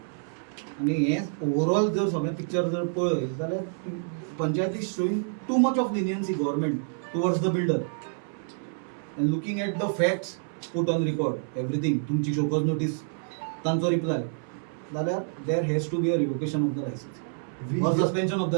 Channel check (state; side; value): silent; left; 58 dB below the other